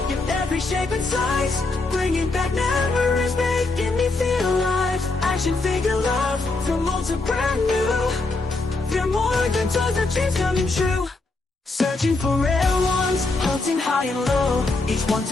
in every shape and size, bringing back memories, making me feel alive. Action figure love from old to brand new. They're more than toys, our dreams coming true. Searching for rare ones, hunting high and low. Each one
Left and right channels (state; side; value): quieter; right; 3.4 dB